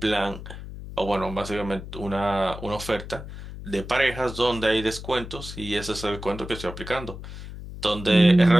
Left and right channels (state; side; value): noise; left; hum, 11 dB below the sound